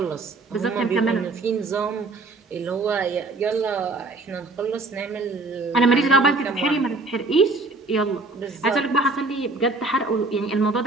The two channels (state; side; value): quieter; left; 3.3 dB